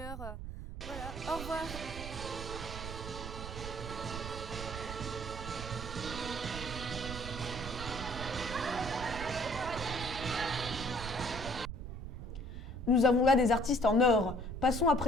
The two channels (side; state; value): right; noise; rumble, 8 dB below the sound